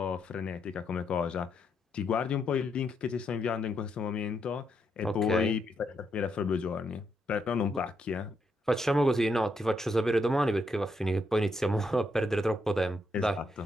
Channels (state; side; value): normal; both; correlation 0.78